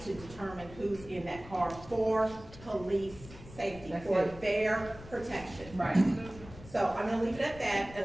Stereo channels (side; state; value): left; noise; rumble, 17 dB below the sound